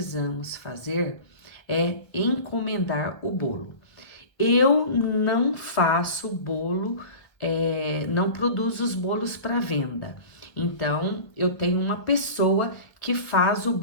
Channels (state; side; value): late; right; 1.4 ms